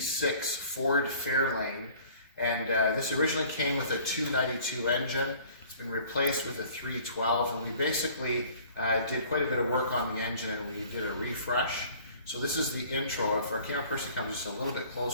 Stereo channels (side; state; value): both; inverted; correlation -0.51